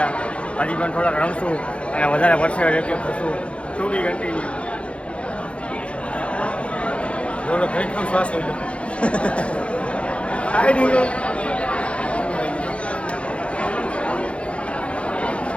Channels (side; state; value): right; late; 0.060 ms